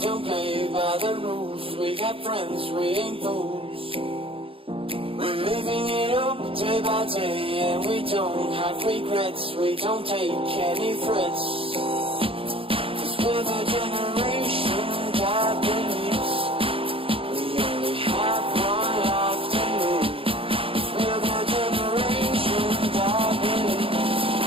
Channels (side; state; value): left; late; 0.27 ms